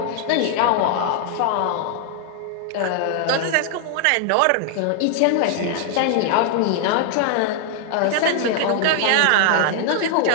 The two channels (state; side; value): different; both; correlation 0.00